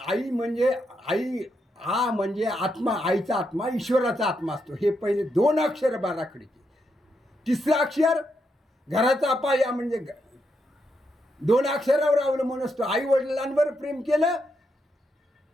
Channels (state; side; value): normal; both; correlation 0.81